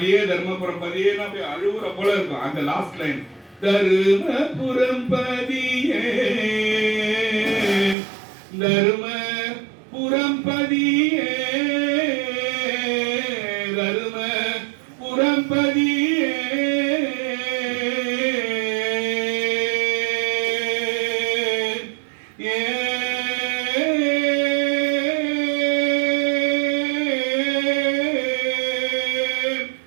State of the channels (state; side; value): drops out; left; at 8.0 s